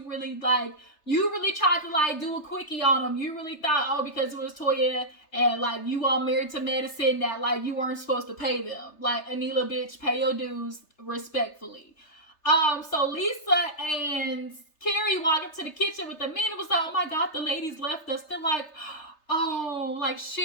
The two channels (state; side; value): late; right; 3.3 ms